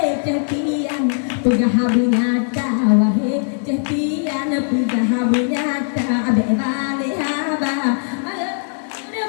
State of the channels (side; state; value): right; silent; digital silence